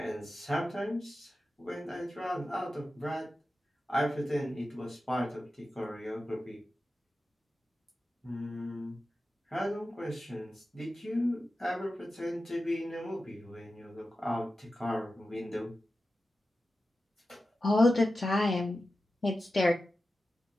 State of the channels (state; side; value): normal; both; correlation 0.93